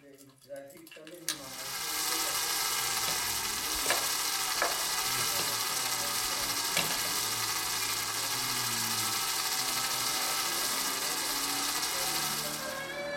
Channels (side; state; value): both; identical; correlation 1.00